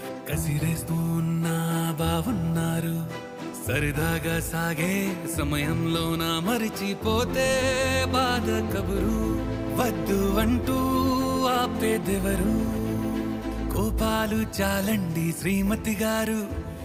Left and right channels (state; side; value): identical; both; correlation 1.00